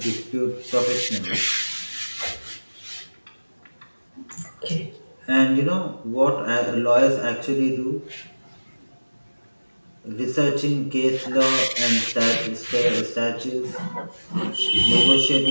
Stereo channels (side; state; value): both; inverted; correlation -1.00